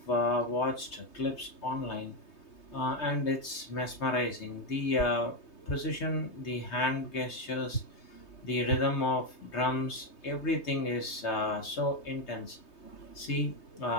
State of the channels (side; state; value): right; late; 3.3 ms